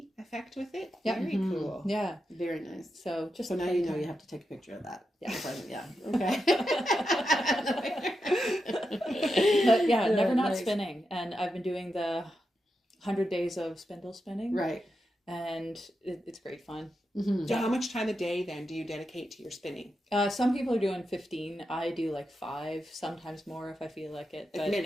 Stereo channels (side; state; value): both; normal; correlation 0.87